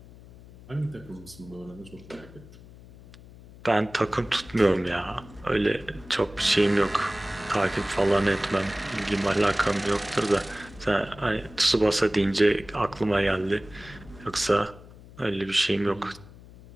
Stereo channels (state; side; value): noise; left; hum, 20 dB below the sound